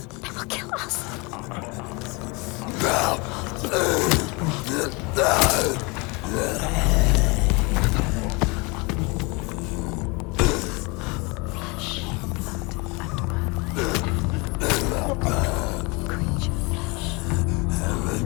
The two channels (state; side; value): quieter; right; 28.1 dB